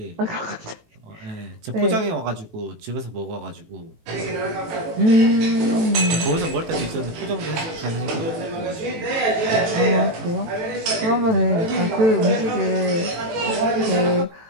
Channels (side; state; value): left; late; 18 ms